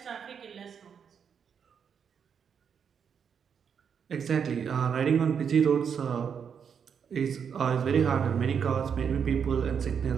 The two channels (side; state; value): left; quieter; 7.2 dB